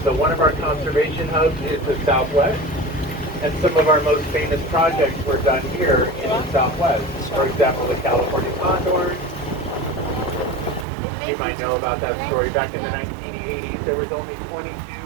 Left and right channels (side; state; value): left; drops out; at 10.9 s